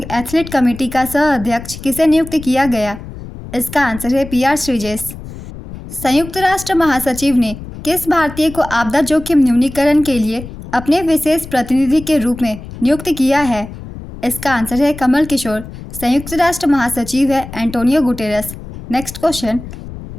एथलीट कमेटी का सह अध्यक्ष किसे नियुक्त किया गया? इसका आंसर है PR श्रीजेश। संयुक्त राष्ट्र महासचिव ने किस भारतीय को आपदा जोखिम न्यूनीकरण के लिए अपने विशेष प्रतिनिधि के रूप में नियुक्त किया है? इसका आंसर है कमल किशोर। संयुक्त राष्ट्र महासचिव है Antonio Guterres. Next question,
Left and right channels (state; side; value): noise; left; rumble, 13 dB below the sound